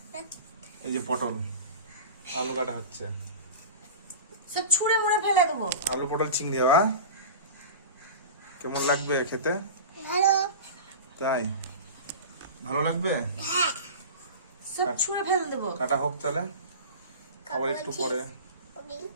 এই যে পটল আলু কাটা হচ্ছে, সব ছুঁড়ে মুড়ে ফেলে দেবো। আলু পটল চিংড়ি হওয়া কেমন লাগবে খেতে? ভালো। তাই ভালো লাগবে? সব ছুঁড়ে ফেলে দেবো। কাটা হোক তাহলে, আবার একটু পরে।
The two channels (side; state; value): both; inverted; correlation -0.32